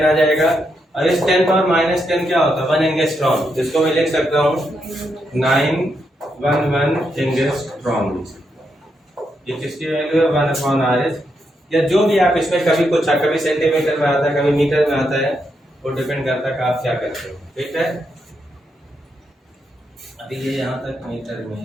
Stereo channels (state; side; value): normal; both; correlation 0.81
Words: आ जाएगा। और इस 10 पावर -10 क्या होता है 1 एंगस्ट्रॉम, जिसको मैं लिख सकता हूँ 911 एंगस्ट्रॉम। ये किसकी वैल्यू है 1/RH, या जो भी आप इसमें कभी कुछ कभी सेंटीमीटर में आता है कभी मीटर में आता है, वो डिपेंड करता है कि आप क्या करते हो। ठीक है, अभी ये यहाँ तक मीटर में